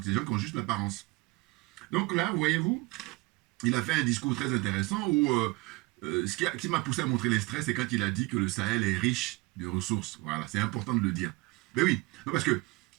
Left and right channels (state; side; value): quieter; left; 23.7 dB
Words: c'est des gens qui ont juste l'apparence. Donc là, voyez-vous, il a fait un discours très intéressant où ce qui m'a poussé à montrer les stress, c'est quand il a dit que le Sahel est riche de ressources. Voilà, c'est important de le dire. Mais oui, non, parce que